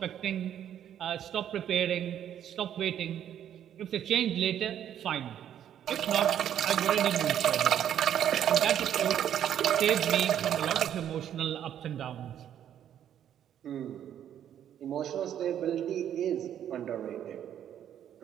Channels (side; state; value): left; quieter; 10.1 dB